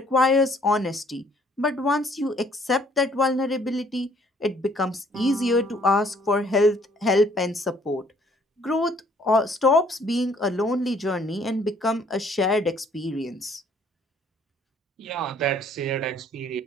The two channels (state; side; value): normal; both; correlation 0.61